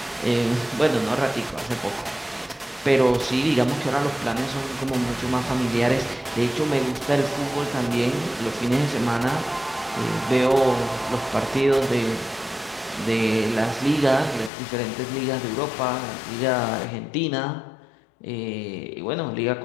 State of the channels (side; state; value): right; drops out; at 14.5 s